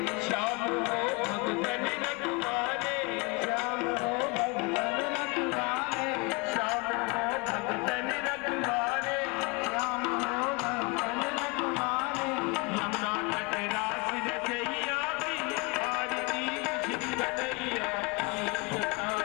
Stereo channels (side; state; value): right; quieter; 27.9 dB